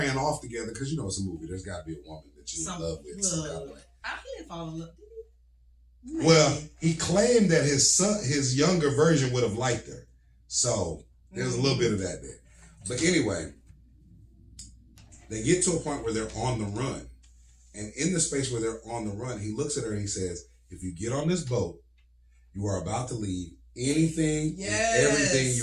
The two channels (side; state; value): both; identical; correlation 1.00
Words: off together because it's a movie. There's got to be a woman that you in love with. He didn't fall in love. Did he? Well, he claimed that his younger version would have liked her. So there's a little bit of that there. But anyway, they get to a point where they're on the run. And in the space where they're on the run, he looks at her and he says, if you get on this boat, you are about to leave anything and everything